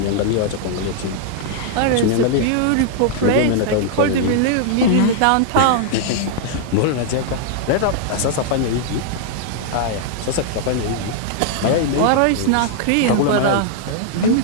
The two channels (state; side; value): different; both; correlation -0.01